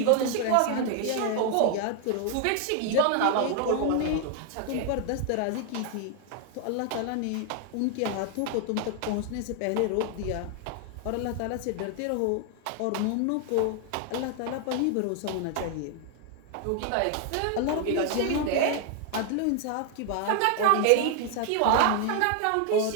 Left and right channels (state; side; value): different; both; correlation 0.00